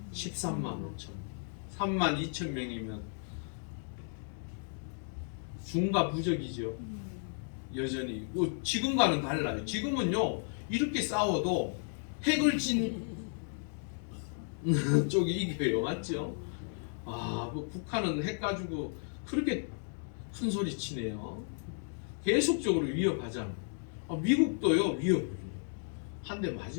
13만 5천. 3만 2천 명이면 중과 부적이죠. 여전히 지금과는 달라요. 지금은요 이렇게 싸워도 핵을 진 쪽이 이겨요. 맞죠? 뭐 북한은 핵 가지고 그렇게 큰 소리 치네요. 계속적으로 위협하잖아요. 미국도요 위협을 한 대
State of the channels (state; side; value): silent; right; 55 dB below the other